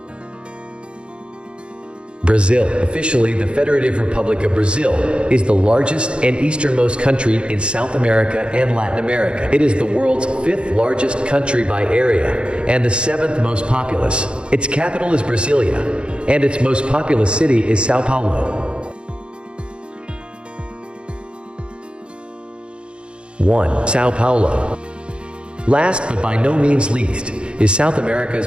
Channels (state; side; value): late; left; 0.056 ms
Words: Brazil, officially the Federative Republic of Brazil, is the largest and easternmost country in South America and Latin America. It is the world's 5th largest country by area and the 7th most populous. Its capital is Brasilia, and its most populous city is Sao Paulo. 1. Sao Paulo. Last but by no means least, is South America's